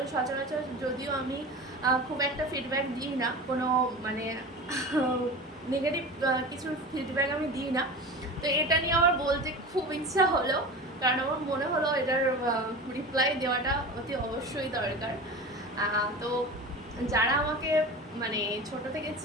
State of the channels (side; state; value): both; normal; correlation 0.32